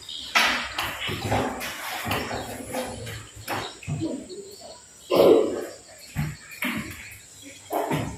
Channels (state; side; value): identical; both; correlation 1.00